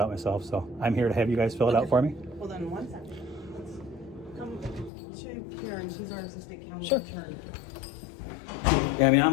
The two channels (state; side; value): drops out; right; at 4.9 s